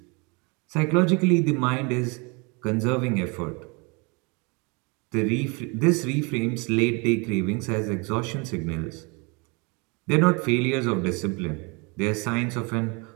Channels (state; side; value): quieter; left; 30.2 dB